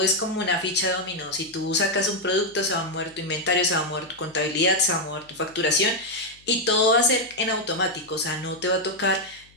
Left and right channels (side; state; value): left; noise; hum, 29 dB below the sound